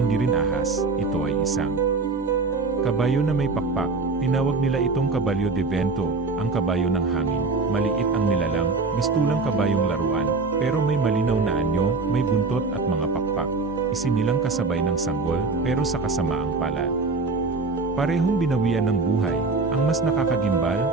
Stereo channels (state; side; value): quieter; left; 3.9 dB